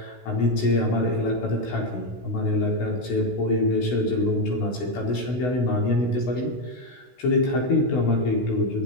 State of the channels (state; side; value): late; right; 16 ms